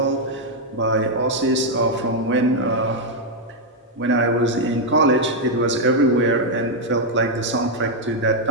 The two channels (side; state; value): both; normal; correlation -0.02